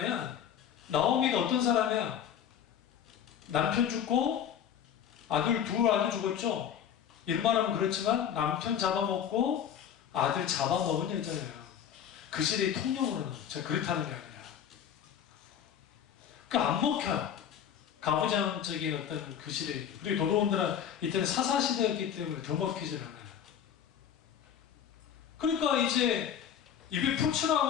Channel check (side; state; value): right; quieter; 9.0 dB